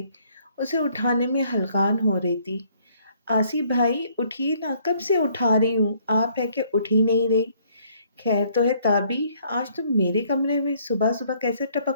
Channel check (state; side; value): inverted; both; correlation -0.64